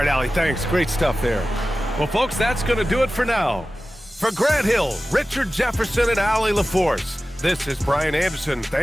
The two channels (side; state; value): both; normal; correlation 0.95